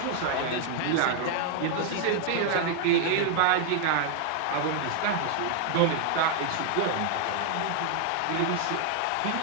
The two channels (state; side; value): different; both; correlation 0.00